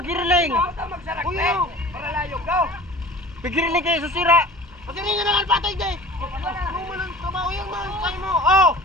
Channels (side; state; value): both; normal; correlation 0.42